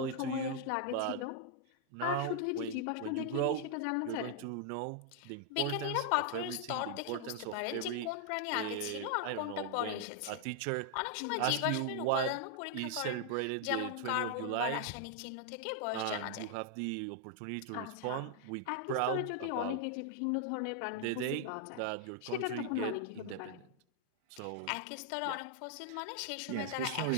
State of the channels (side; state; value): both; different; correlation 0.00